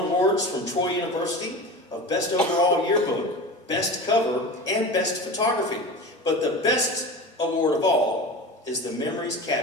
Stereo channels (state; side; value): normal; both; correlation 0.31